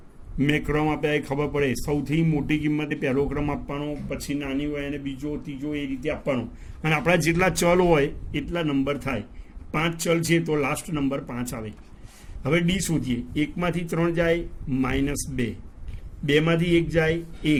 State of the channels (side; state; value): both; identical; correlation 1.00